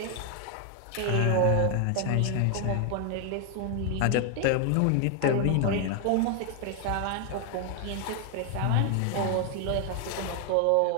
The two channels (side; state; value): both; different; correlation 0.00